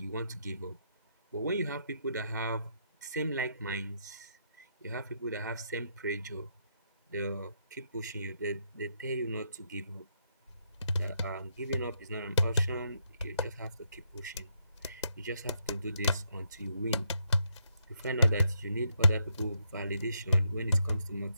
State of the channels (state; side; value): inverted; both; correlation -0.78